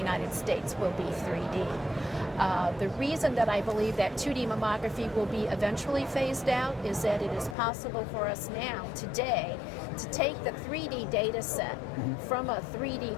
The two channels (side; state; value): right; drops out; at 7.6 s